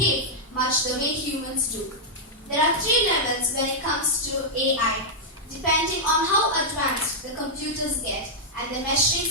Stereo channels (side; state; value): both; normal; correlation -0.06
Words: much the way humans do. There are 3 levels when it comes to AI, depending on how advanced the computers get, and the measuring